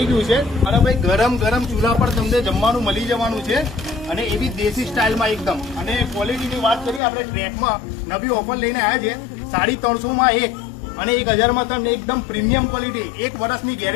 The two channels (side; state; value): right; drops out; at 7.0 s